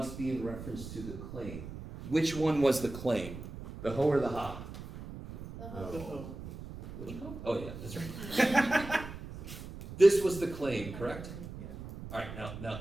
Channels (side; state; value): right; noise; rumble, 11 dB below the sound